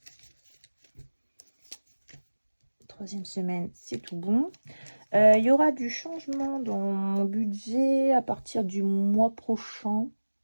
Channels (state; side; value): inverted; both; correlation -1.00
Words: 3e semaine, c'est tout bon. Il y aura du changement dans mon budget à partir du mois prochain.